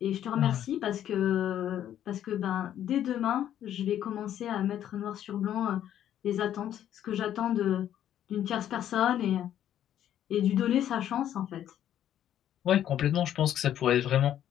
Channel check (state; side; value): quieter; right; 10.9 dB